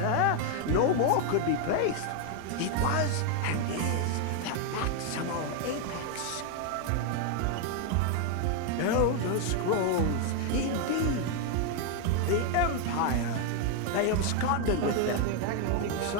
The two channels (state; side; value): different; both; correlation 0.00